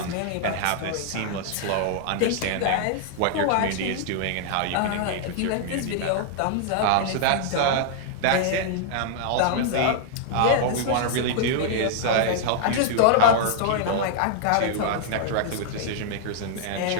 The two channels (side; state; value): both; different; correlation -0.01